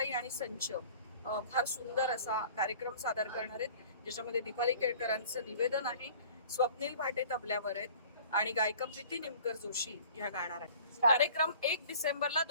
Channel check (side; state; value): both; inverted; correlation -0.48